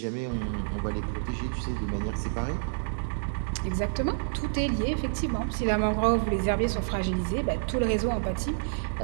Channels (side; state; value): left; silent; digital silence